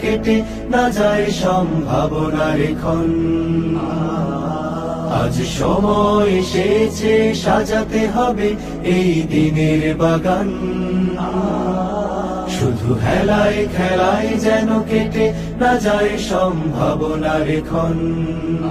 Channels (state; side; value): identical; both; correlation 1.00